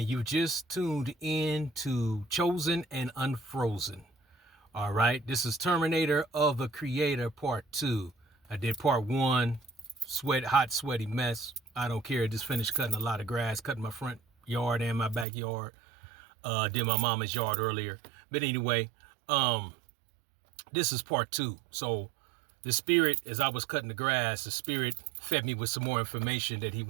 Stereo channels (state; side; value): drops out; left; at 15.2 s